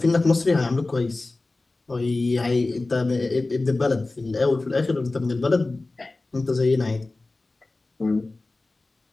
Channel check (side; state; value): right; quieter; 3.2 dB